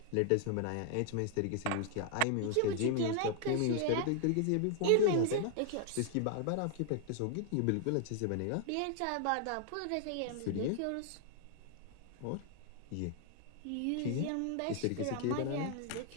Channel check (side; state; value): both; different; correlation 0.00